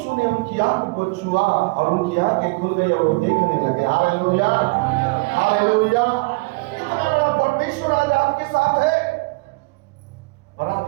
ने उनकी आंख को छुआ और उनकी आंखें खुल गई और वो देखने लगे। Hallelujah, hallelujah. इतना बड़ा परमेश्वर आज आपके साथ है और आप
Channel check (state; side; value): quieter; left; 26.4 dB